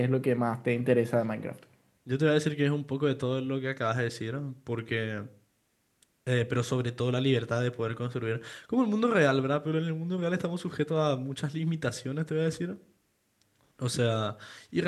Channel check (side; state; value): both; identical; correlation 1.00